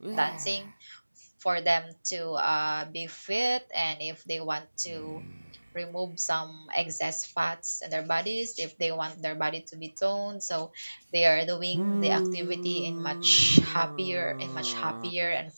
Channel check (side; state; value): both; inverted; correlation -1.00